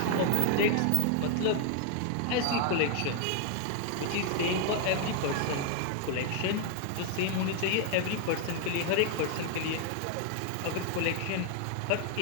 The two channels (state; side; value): different; both; correlation 0.00